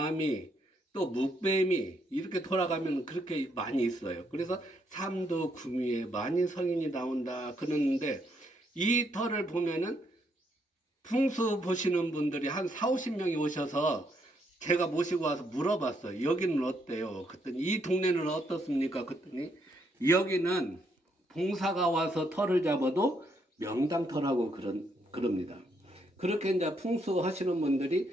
또 묵뱀이 이렇게 돌아가면 그렇게 많이 있어요. 그래서 삼두구미에 만인 성인이 나온다 그러는데 이 터를 보면은 풍수 보시는 분들이 한 40-50명이 오셔서 제가 모시고 와서 물어봤어요. 여기는 어때요? 그랬더니 이 동네는 어떻습니까? 그랬더니 여기는 봉사가 와서 터를 잡아도 명당터라고 그럽니다. 그렇게 이제 풍수 하시는 분들이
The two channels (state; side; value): normal; both; correlation 0.74